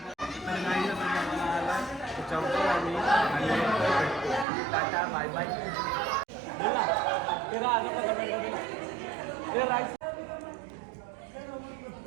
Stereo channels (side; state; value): left; drops out; at 4.5 s